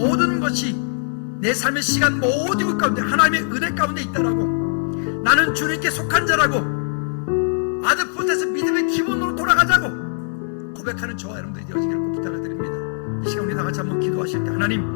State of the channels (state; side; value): silent; right; digital silence